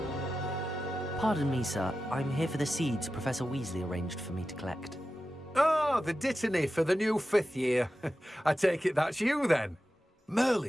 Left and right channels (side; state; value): both; normal; correlation 0.93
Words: Pardon me, sir. I'm here for the seeds Professor Weasley arranged for me to collect. Oh, the dittany for the new 5th year. I take it that's you then.